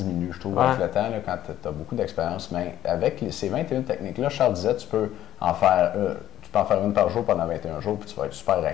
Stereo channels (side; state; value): right; quieter; 12.5 dB